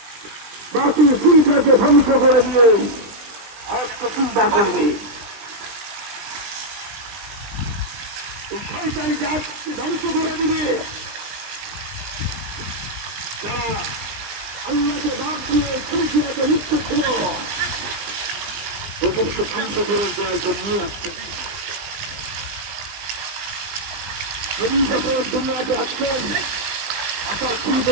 বাতিল চিন্তাকে ধ্বংস করে দিয়ে হককে চিন্তা করবে, এই শয়তানি জাতকে ধ্বংস করে দিবে। যারা আল্লাহকে বাদ দিয়ে খুশিয়াতে লিপ্ত ছিল, ওদেরকে ধ্বংস করে দেওয়ার জন্যই আসছে। নবী যখন দুনিয়াতে আসলেন, আসার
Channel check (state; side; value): late; left; 19 ms